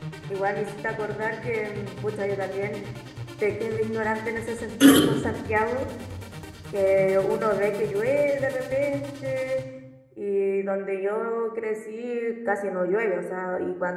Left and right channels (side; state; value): both; identical; correlation 1.00